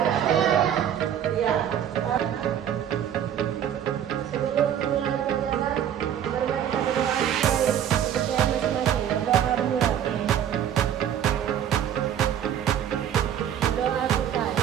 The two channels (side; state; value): left; quieter; 9.8 dB